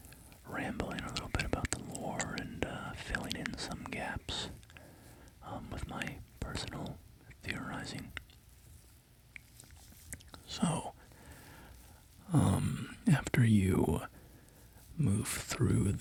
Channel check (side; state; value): both; identical; correlation 1.00